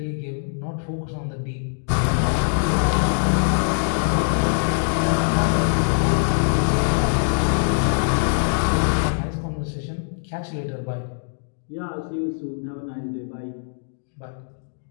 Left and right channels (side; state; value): right; silent; digital silence